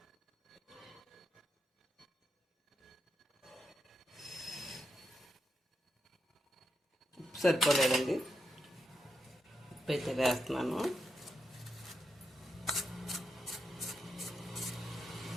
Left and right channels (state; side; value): normal; both; correlation 0.84